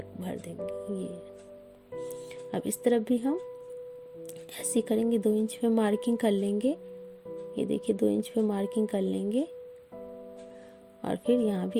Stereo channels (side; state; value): both; identical; correlation 1.00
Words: भर देंगे। ये अब इस तरफ भी हम ऐसे करेंगे, 2 इंच पे मार्किंग कर लेंगे। ये देखिए 2 इंच पे मार्किंग कर लेंगे, और फिर यहाँ